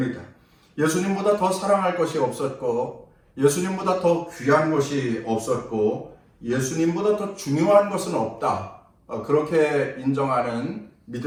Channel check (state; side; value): identical; both; correlation 1.00